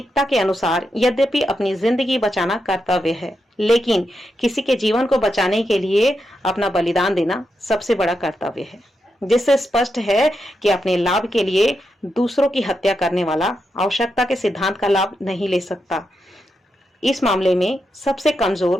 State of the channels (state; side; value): normal; both; correlation 0.85